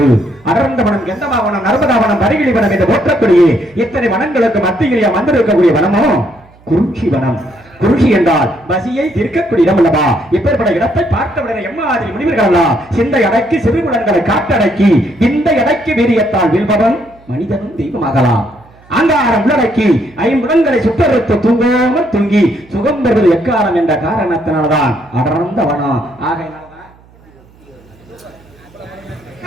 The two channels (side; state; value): right; noise; hum, 28 dB below the sound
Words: அடர்ந்த வனம், கெந்தமாவனம், நர்மதாவனம், பரிகிழி வனம் என்று போற்றக்கூடிய இத்தனை வனங்களுக்கு மத்தியிலே வந்திருக்கக்கூடிய வனமோ குறிஞ்சி வனம். குறிஞ்சி என்றால் பசியை தீர்க்கக்கூடிய இடம் அல்லவா? இப்பேற்பட்ட இடத்தை பார்த்தவுடனே எம்மாதிரி முனிவர்கள் சிந்தை அடக்கி சிறுகுலன்களை காட்டடக்கி இந்த எடைக்கு வீரியத்தால் வீழ்பவன் மனிதனும் தெய்வமாகலாம். அங்காரம் உள்ளடக்கி ஐம்புலன்களை சுட்டறுத்து தூங்காமல் தூங்கி சுகம் பெறுவது எக்காலம் என்ற காரணத்தினால்தான் அடர்ந்த வனம். ஆகையினால்தான்